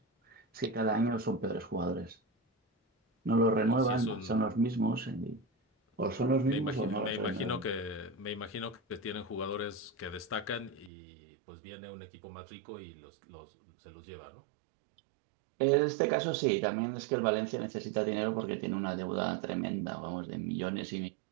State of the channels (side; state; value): left; drops out; at 10.9 s